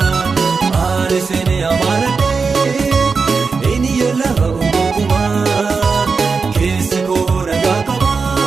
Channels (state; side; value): quieter; left; 4.9 dB